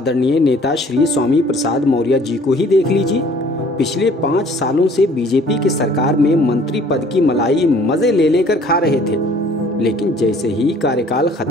नेता श्री स्वामी प्रसाद मौर्य जी को ही देख लीजिए। पिछले 5 सालों से बीजेपी की सरकार में मंत्री पद की मलाई मजे ले लेकर खा रहे थे, लेकिन जैसे ही कार्यकाल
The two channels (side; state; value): both; normal; correlation 0.55